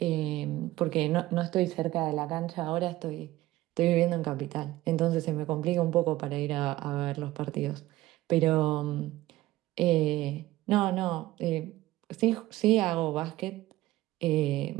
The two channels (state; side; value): quieter; left; 16.5 dB